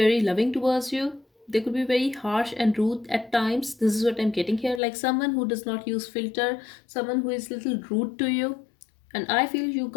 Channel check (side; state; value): right; drops out; at 4.8 s